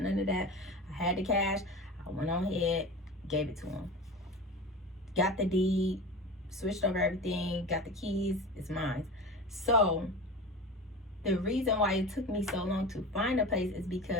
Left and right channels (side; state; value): both; normal; correlation 0.31